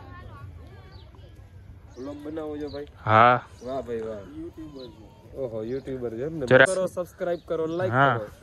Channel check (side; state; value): both; identical; correlation 1.00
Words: વ્લોગ બનાવો છો ભાઈ હા વાહ ભાઈ વાહ યુટ્યુબર ઓહો યુટ્યુબર છે ને જરા કરો સબસ્ક્રાઇબ કરો લાઈક હા.